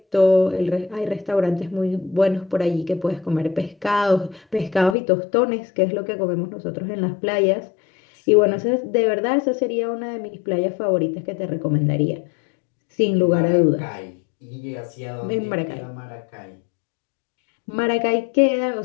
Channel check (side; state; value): right; drops out; at 5.0 s